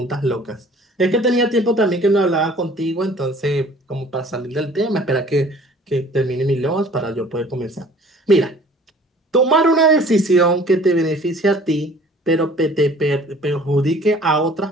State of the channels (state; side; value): normal; both; correlation 0.51